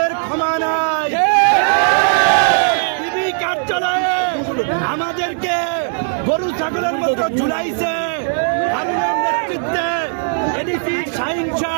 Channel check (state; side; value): silent; left; digital silence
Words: ক্ষমা নাই। টিভি কার্যালয়ে আমাদেরকে গরু ছাগলের মতো ঝুলাইছে। হারুনের নেতৃত্বে এডিসি শাহীন